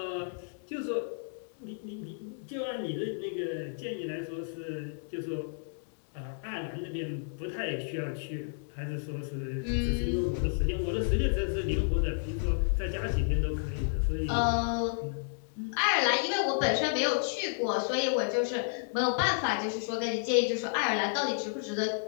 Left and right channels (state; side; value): silent; right; digital silence